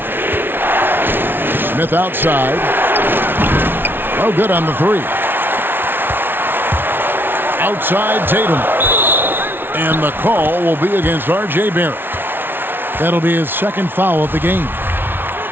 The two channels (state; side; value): late; left; 0.10 ms